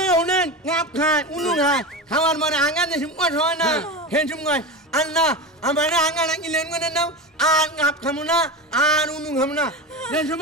হুনেন গাপ খায় উনু খায় খাওয়ার মানে আঙ্গা দেশম কত হয় না হেসম কয় আল্লাহ আমার আঙ্গা নাকি লেন করে নাও আর গাপ খামু না আর উনু খামু না দেশম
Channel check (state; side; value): normal; both; correlation 0.24